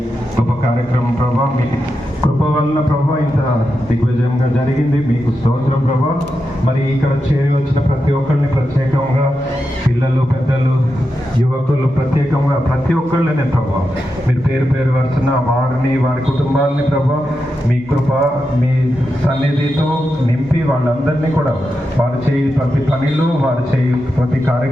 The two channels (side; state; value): both; normal; correlation 0.88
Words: గొప్ప కార్యక్రమం ప్రభా మీ కృప వలన ప్రభా ఇంత దిగ్విజయంగా జరిగింది. మీకు స్తోత్రం ప్రభా. మరి ఇక్కడ చేరి వచ్చిన ప్రతి ఒక్కరిని ప్రత్యేకంగా పిల్లలు, పెద్దలు, యువకులు ప్రత్యేకంగా ప్రతి ఒక్కళ్ళనే ప్రభా మీరు పేరు పేరు వరుసన వారిని, వారి కుటుంబాలని ప్రభా మీ కృప, మీ సన్నిధితో నింపి వాళ్ళందరినీ కూడా వారు చేయి ప్రతి పనిలో, వారు చేయి ప్రతి